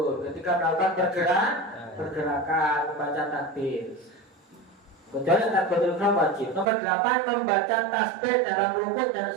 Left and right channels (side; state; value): left; drops out; at 6.7 s